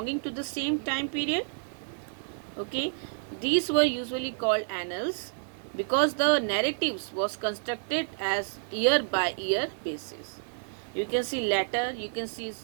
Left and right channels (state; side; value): silent; left; 56 dB below the other